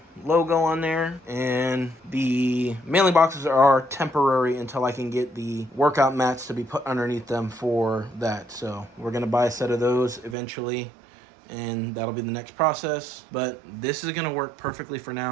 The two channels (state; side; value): drops out; left; at 10.4 s